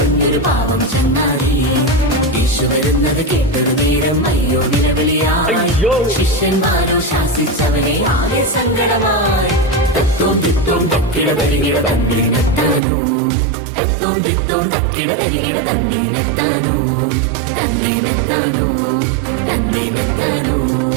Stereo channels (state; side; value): drops out; left; at 12.8 s